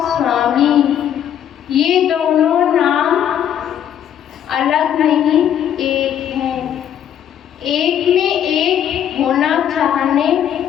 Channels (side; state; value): right; quieter; 9.8 dB